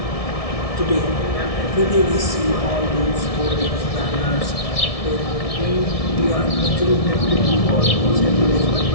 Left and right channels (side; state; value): right; late; 1.7 ms